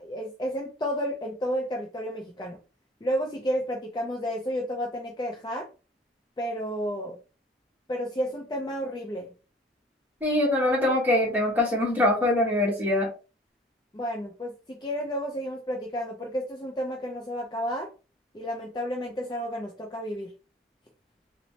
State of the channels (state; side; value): normal; both; correlation 0.47